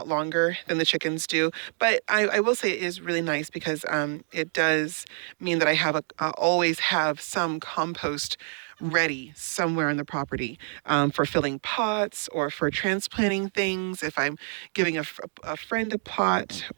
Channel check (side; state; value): left; silent; 60 dB below the other